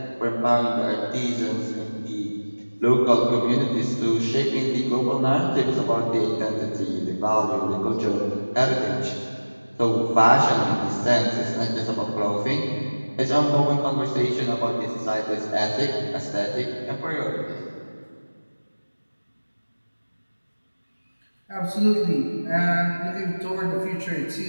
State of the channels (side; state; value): both; inverted; correlation -1.00